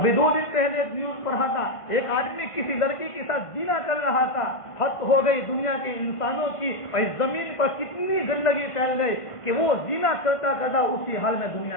2 دن پہلے ایک نیوز پڑھا تھا، ایک آدمی کسی لڑکی کے ساتھ زنا کر رہا تھا، حد ہو گئی دنیا کے انسانوں کی، اور اس زمین پر کتنی گندگی پھیل گئی کہ وہ زنا کرتا اسی حال میں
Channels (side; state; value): right; late; 1.5 ms